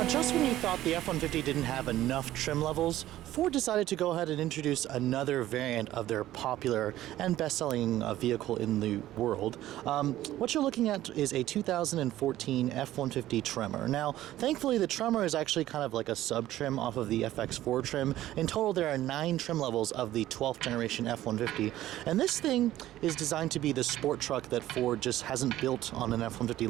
Just when you thought the F-150 didn't have enough trim levels, Ford decided to go ahead and introduce another variant of their popular and best-selling vehicle in the world. What you're looking at is a 2014 F-150 Tremor. Now, thankfully, the Tremor is actually kind of like a sub-trim off of the FX4 trim. In total, there are 9 trim levels of the 12th generation F-150, and this thing is designed to be the sport truck that Ford just hasn't built on an F-150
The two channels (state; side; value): quieter; left; 14.2 dB